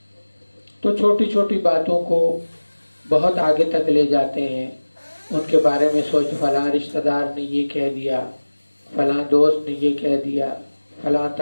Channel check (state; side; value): inverted; both; correlation -1.00